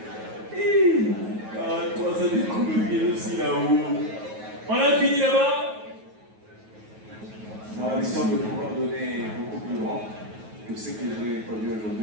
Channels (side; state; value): left; late; 9.3 ms